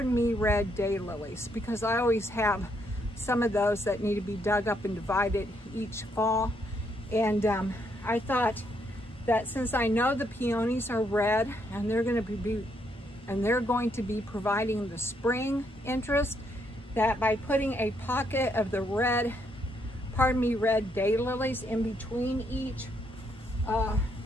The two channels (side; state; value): both; normal; correlation 0.74